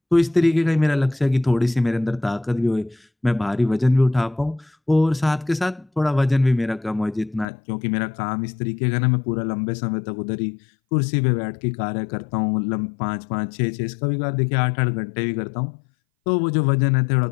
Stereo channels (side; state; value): right; drops out; at 7.5 s